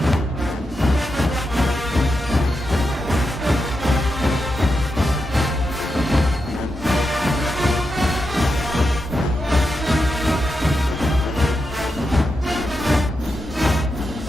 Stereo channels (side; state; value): both; normal; correlation 0.87